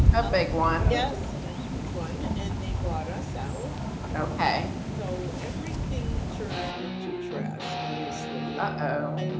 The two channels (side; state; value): both; identical; correlation 1.00